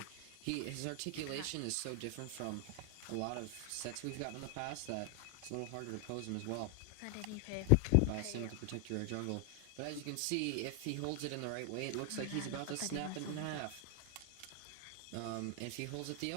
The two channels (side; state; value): both; different; correlation 0.00